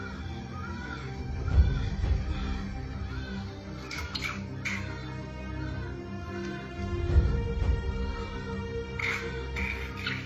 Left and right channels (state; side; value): identical; both; correlation 1.00